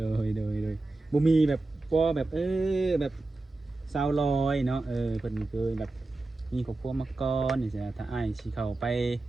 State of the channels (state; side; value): quieter; left; 3.1 dB